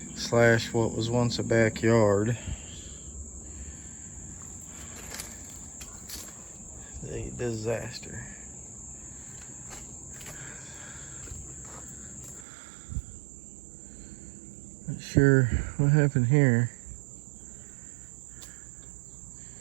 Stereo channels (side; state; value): left; drops out; at 12.5 s